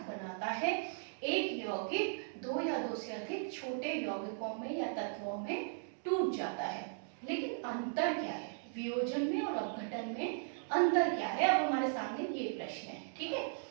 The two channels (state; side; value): silent; left; digital silence